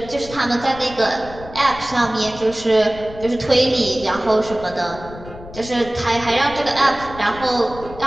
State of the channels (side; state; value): left; noise; rumble, 15 dB below the sound